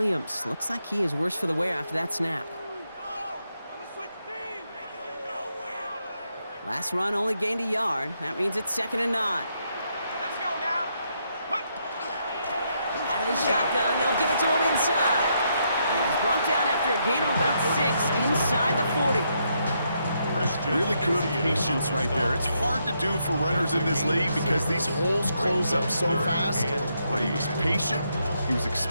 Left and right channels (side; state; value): both; inverted; correlation -0.78